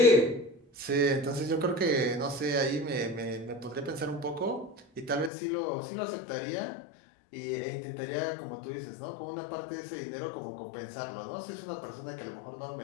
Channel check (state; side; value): drops out; right; at 5.3 s